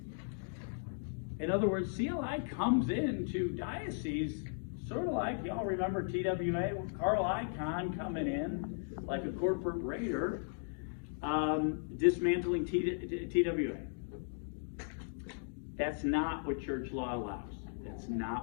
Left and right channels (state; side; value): silent; right; digital silence